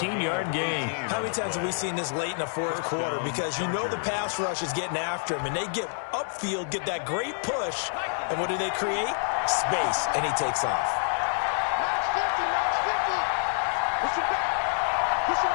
gain. How many times have we seen this late in the 4th quarter? Because you know the pass rush is getting after him, and they get upfield, get that great push, and what do they create? Space, and he takes off.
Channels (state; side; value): silent; right; digital silence